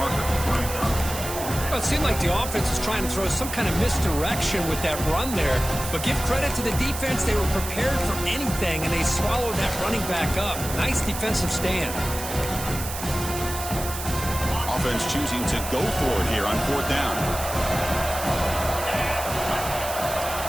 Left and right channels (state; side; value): noise; right; hiss, 8 dB below the sound